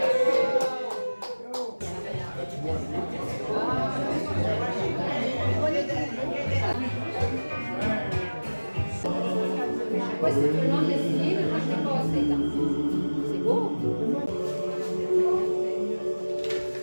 Ouais, c'est tout le monde l'essayer, mais moi je l'ai pas assez dans. C'est beau!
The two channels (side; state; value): both; inverted; correlation -1.00